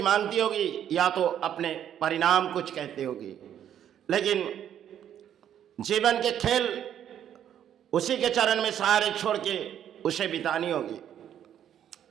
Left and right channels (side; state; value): left; quieter; 10.0 dB